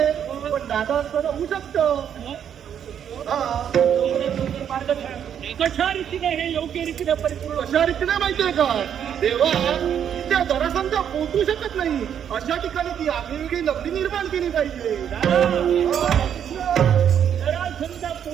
पण दादा असताना होऊ शकतं. कशा रीतीने हे योग्य रीतीने परिपूर्ण अशा रीतीने माहितीये का देवा, त्या जरासंधा पोहोचू शकत नाही अशा ठिकाणी ती आगळीवेगळी नगरी निर्माण केली पाहिजे. समजा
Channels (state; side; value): quieter; left; 8.9 dB